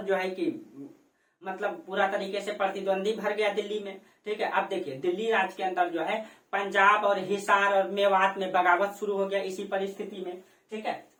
जो है कि मतलब पूरा तरीके से प्रतिद्वंदी भर गया दिल्ली में। ठीक है, अब देखिए दिल्ली राज्य के अंदर जो है पंजाब और हिसार और मेवात में बगावत शुरू हो गया इसी परिस्थिति में। ठीक है,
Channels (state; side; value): identical; both; correlation 1.00